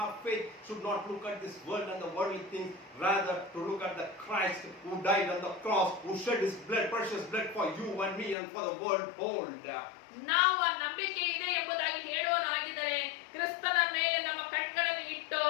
faith should not look at this world and the worldly things, rather to look at the Christ who died on the cross, who shed his blood, precious blood for you and me and for the world whole. ನಾವು ಆ ನಂಬಿಕೆ ಇದೆ ಎಂಬುದಾಗಿ ಹೇಳೋನಾಗಿದ್ದರೆ ಕ್ರಿಸ್ತನ ಮೇಲೆ ನಮ್ಮ ಕಣ್ಗಳನ್ನು ಇಟ್ಟು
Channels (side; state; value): right; drops out; at 8.3 s